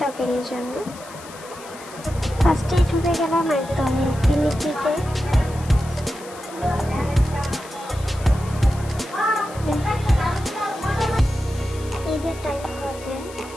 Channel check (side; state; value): left; noise; hiss, 18 dB below the sound